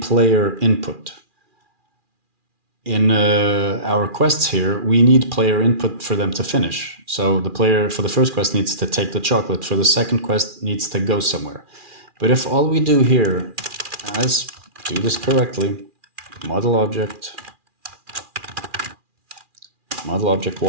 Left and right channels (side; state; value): left; late; 2.4 ms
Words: input. In our quests here, we need player input for them to finish. So the player for the first quest needs to take the chocolate, for the second quest needs to go somewhere. But if all we do here, let's do this correctly, model object